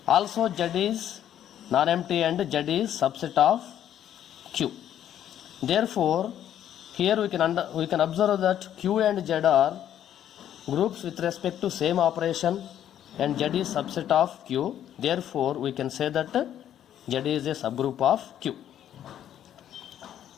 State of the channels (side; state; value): right; quieter; 10.7 dB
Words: Also Z is non-empty and Z is subset of Q. Therefore, here we can observe that Q and Z are groups with respect to same operation, and Z is subset of Q. Therefore, we can say that Z is a subgroup of Q.